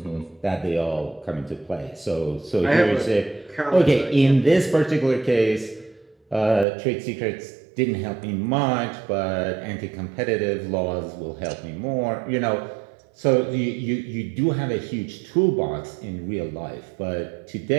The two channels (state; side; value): drops out; left; at 6.7 s